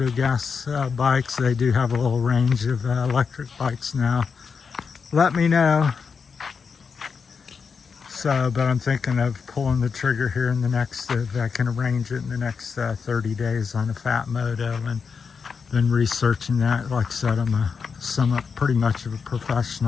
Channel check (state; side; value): quieter; right; 5.7 dB